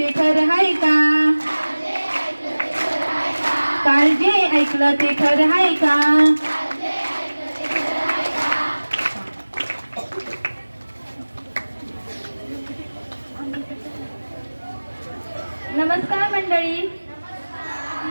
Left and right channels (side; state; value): both; inverted; correlation -1.00